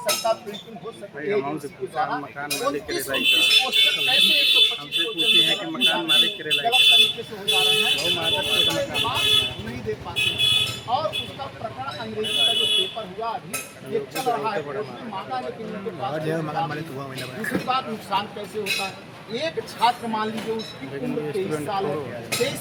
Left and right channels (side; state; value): both; identical; correlation 1.00